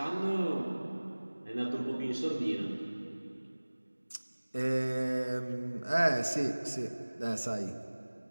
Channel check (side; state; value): both; inverted; correlation -1.00